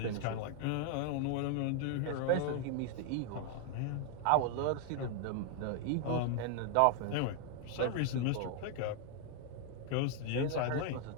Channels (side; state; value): both; different; correlation 0.00